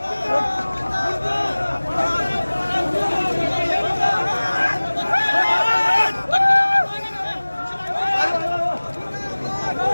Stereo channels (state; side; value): inverted; both; correlation -1.00